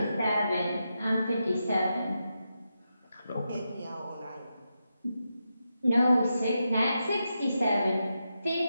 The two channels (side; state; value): both; inverted; correlation -0.87